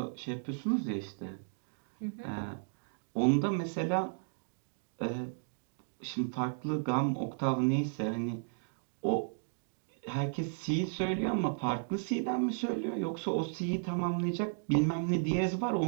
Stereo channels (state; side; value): silent; left; digital silence